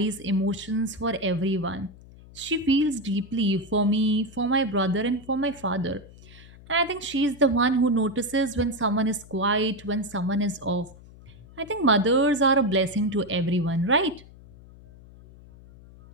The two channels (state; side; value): noise; left; hum, 21 dB below the sound